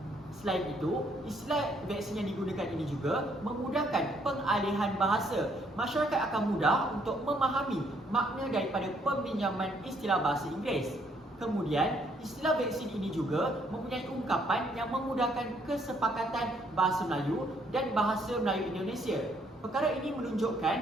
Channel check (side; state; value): both; normal; correlation 0.68